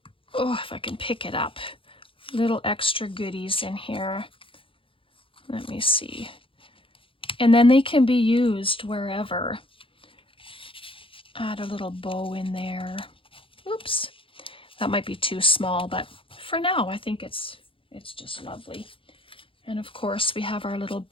oh, if I can pick it up, little extra goodies in here. Let me see. And then they can be used wherever. Add a little bow in there. Oops. That might be too small, but for now, I think it's just lovely. And of course, we have our little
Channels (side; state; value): right; late; 0.26 ms